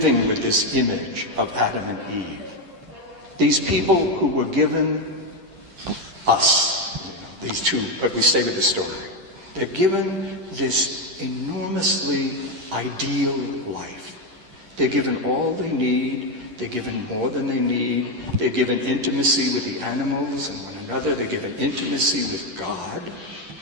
with this image of Adam and Eve. These people who were given us, these two, but we stay with the story. They're given this enormously ideal life. They're given all they need. They're given more than they need. They're given intimacy with the animals and one another. They're given intimacy with God.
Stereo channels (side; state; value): left; late; 10 ms